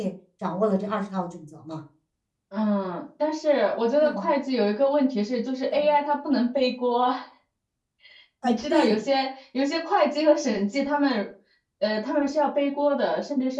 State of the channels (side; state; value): both; identical; correlation 1.00